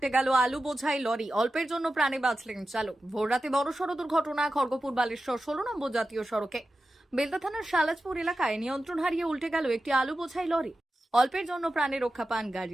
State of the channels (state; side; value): normal; both; correlation 0.93